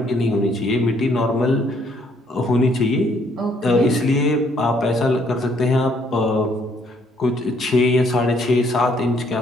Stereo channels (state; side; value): normal; both; correlation 0.67